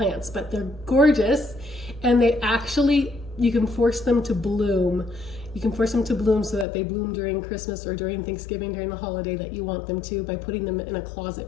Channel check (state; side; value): drops out; right; at 6.7 s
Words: but they're gorgeous, and they actually, you can force them to bloom. You can force them to bloom so that they bloom during Christmas or during Thanksgiving, during the holiday that you want them to, by putting them in a